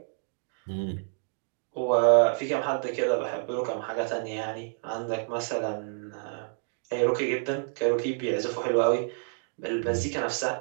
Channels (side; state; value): left; silent; digital silence